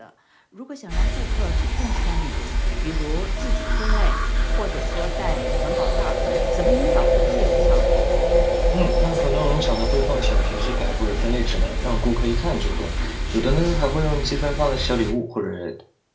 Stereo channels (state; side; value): identical; both; correlation 1.00